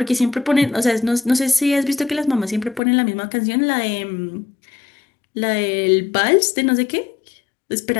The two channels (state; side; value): drops out; right; at 2.8 s